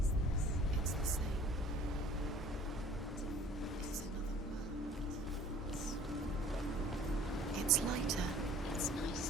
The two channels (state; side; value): normal; both; correlation 0.50